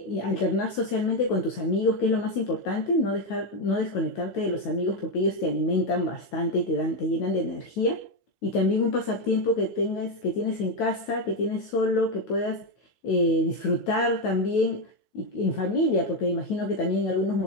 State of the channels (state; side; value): late; right; 9.1 ms